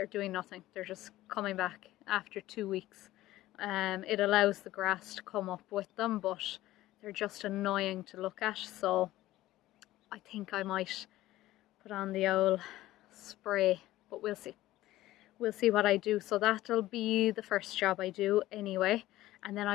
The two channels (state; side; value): quieter; right; 15.9 dB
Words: doing nothing. They're just coming back after 2 weeks. It allows the grass to come up with them, but they're just annoying to look at. So I think I might put on the old spray, but we'll see. We'll see what I do. So that'll be the first job I do anyway. And then